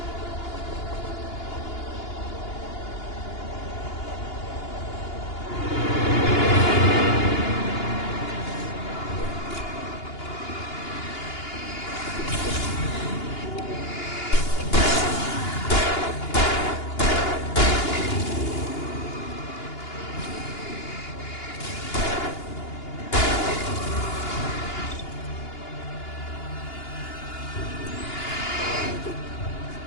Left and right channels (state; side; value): late; right; 2.8 ms